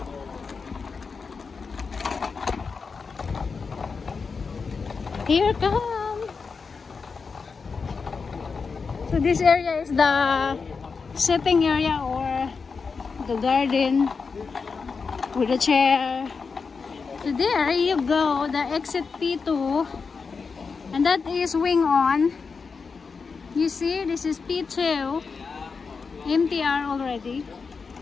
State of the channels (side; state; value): right; quieter; 5.0 dB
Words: Here comes. So this area is the sitting area or the garden with a chair. So there you go, the exit P2, and that is Wing On. You see, this is P2, MTR already,